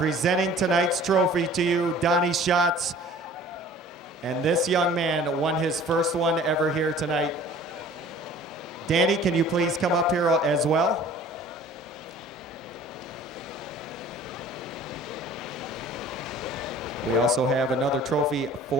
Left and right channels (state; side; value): normal; both; correlation 0.48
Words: tonight's trophy to you, Donnie Schatz. And this young man won his first one ever here tonight. Danny, can you please come up here as well? We also have another trophy